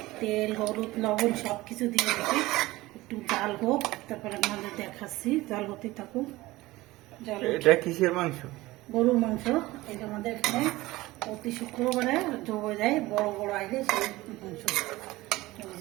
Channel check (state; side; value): quieter; left; 19.0 dB